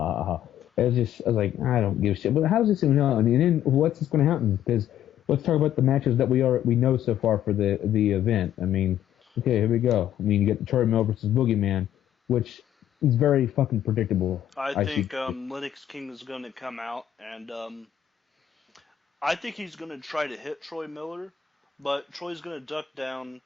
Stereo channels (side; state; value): right; quieter; 10.8 dB